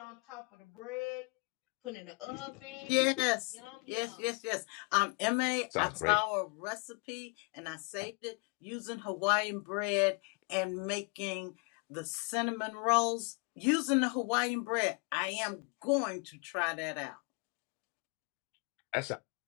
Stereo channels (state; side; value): quieter; right; 34.6 dB